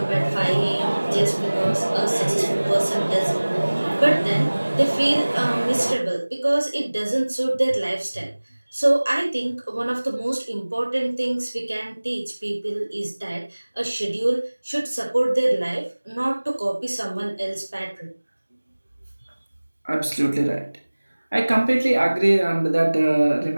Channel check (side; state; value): both; inverted; correlation -1.00